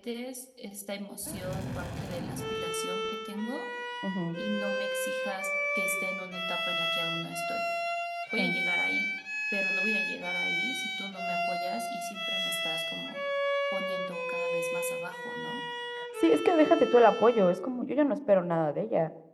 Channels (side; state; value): both; identical; correlation 1.00